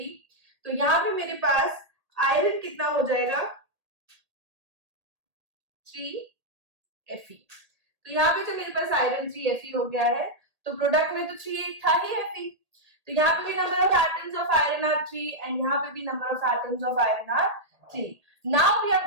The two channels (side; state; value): left; late; 1.8 ms